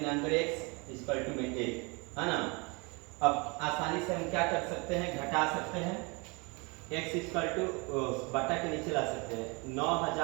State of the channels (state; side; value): quieter; left; 29.2 dB